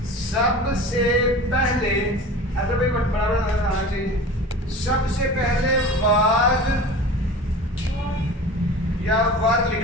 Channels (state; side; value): normal; both; correlation 0.36